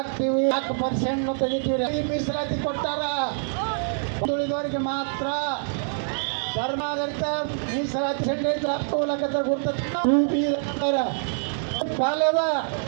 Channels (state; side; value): silent; left; digital silence